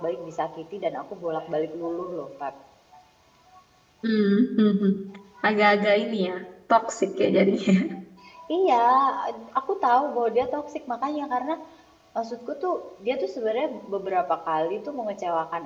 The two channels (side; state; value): both; identical; correlation 1.00